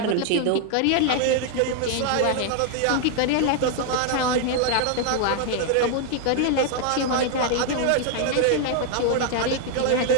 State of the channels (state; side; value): different; both; correlation 0.00